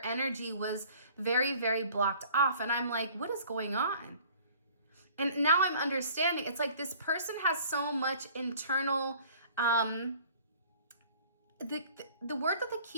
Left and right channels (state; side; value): inverted; both; correlation -0.51